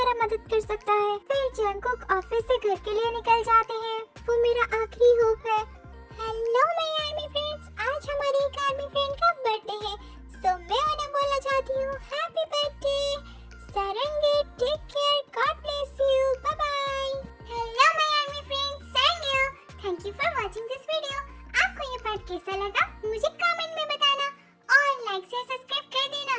मदद कर सकता है। फिर जंकुक ऑफिस से घर के लिए निकल जाते हैं, वो मेरा आखिरी होप है। हेलो माय आर्मी फ्रेंड्स, आज हमारी एक आर्मी फ्रेंड का बर्थडे है, सो मैं उन्हें बोलना चाहती हूँ happy birthday Sarangi, take care, god bless you, bye bye. Hello my army friends, thank you for watching this video. आपको ये पार्ट कैसा लगा मुझे कमेंट में बताना, और लाइक से सब्सक्राइब कर देना,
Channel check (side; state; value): both; identical; correlation 1.00